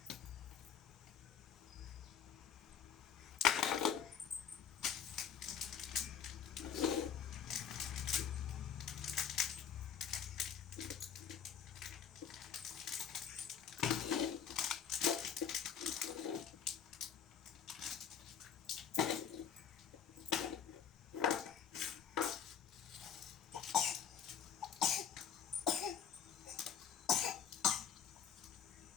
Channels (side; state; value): right; quieter; 7.7 dB